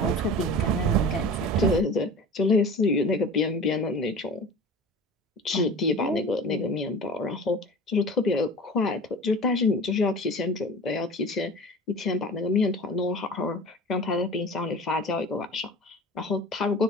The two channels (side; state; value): both; normal; correlation 0.37